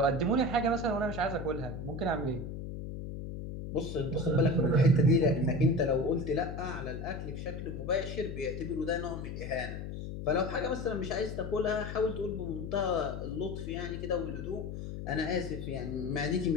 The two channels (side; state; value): left; noise; hum, 7 dB below the sound